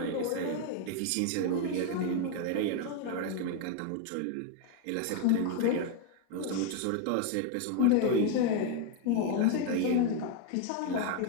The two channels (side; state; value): both; different; correlation 0.01